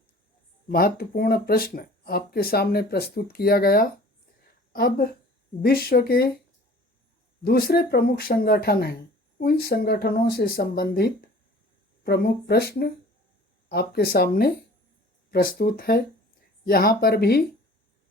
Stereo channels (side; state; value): both; normal; correlation 0.47